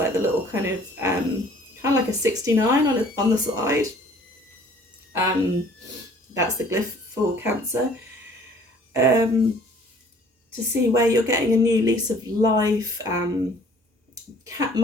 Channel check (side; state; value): both; normal; correlation 0.54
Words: the little kind of like a 69 on the side. That's the glyph for Cancer. To see where you're getting a new lease of life.